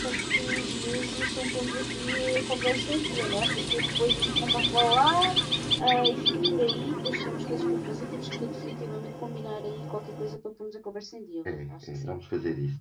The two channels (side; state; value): both; identical; correlation 1.00